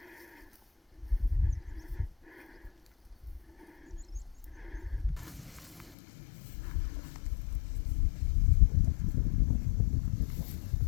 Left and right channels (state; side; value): drops out; right; at 6.0 s